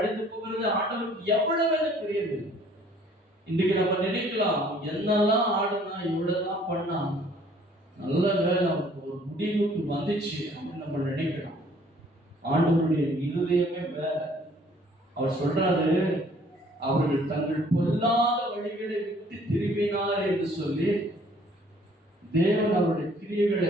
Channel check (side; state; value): both; normal; correlation 0.58